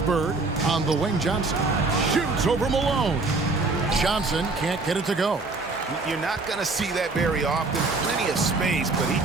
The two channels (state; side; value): quieter; left; 3.7 dB